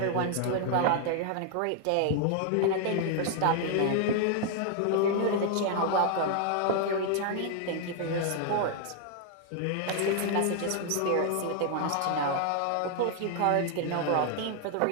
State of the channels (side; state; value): both; different; correlation 0.00